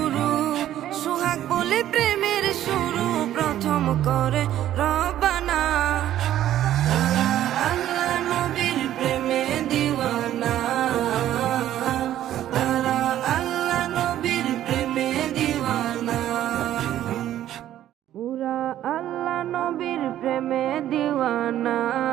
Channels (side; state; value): left; quieter; 12.3 dB